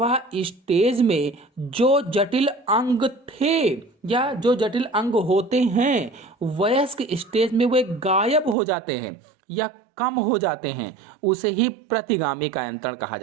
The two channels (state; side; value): drops out; left; at 8.6 s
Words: स्टेज में जो जटिल अंग थे या जो जटिल अंग होते हैं वयस्क स्टेज में वे गायब हो जाते हैं या कम हो जाते हैं, उसे ही प्रतिगामी कायांतरण कहा